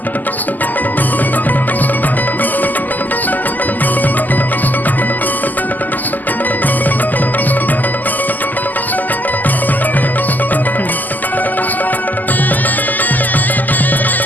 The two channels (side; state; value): right; late; 0.084 ms